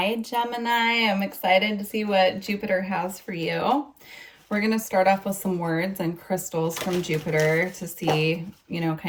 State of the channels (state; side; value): identical; both; correlation 1.00